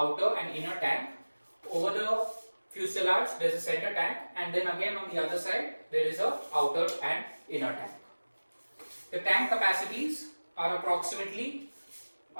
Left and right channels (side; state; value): both; inverted; correlation -1.00